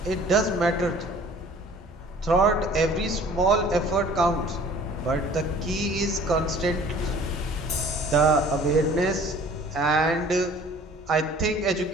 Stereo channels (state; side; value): normal; both; correlation 0.50